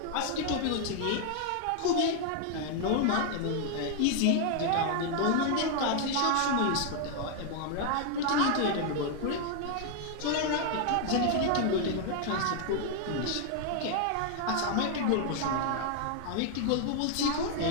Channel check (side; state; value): both; different; correlation 0.00